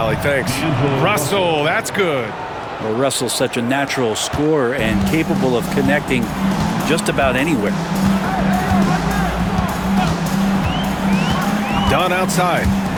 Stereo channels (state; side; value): identical; both; correlation 1.00